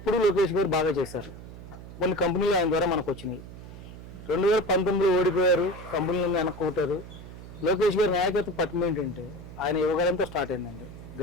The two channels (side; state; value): right; noise; hum, 14 dB below the sound